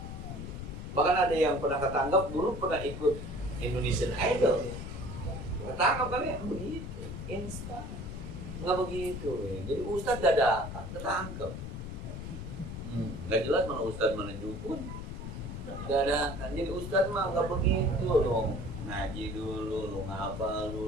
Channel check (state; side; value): noise; left; rumble, 7 dB below the sound